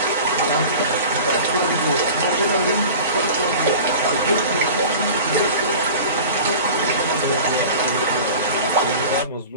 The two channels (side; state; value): both; inverted; correlation -0.37